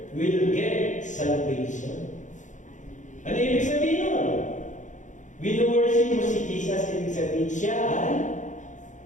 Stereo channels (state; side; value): late; right; 0.36 ms